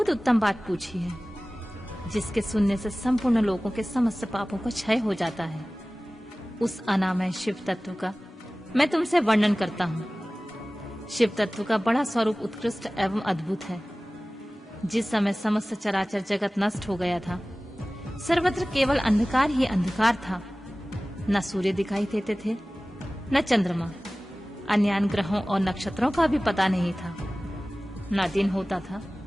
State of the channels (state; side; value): normal; both; correlation 0.98